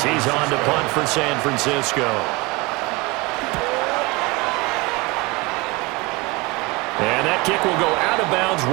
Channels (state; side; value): quieter; left; 24.6 dB